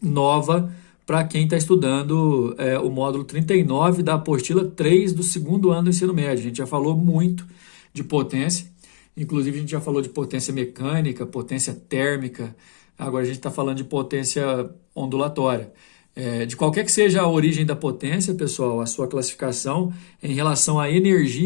nova para quem está estudando o módulo 39 da apostila 3 do segundo ano do ensino médio. A gente já falou muito de potência, inclusive a gente já falou de potência mecânica, potência térmica, agora a gente está falando de potência ondulatória. De qualquer que seja a origem da potência, pessoal, a sua classificação em relação a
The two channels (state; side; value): silent; right; digital silence